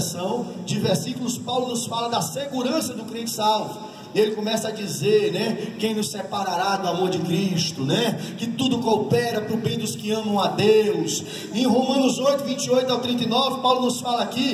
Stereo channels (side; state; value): both; identical; correlation 1.00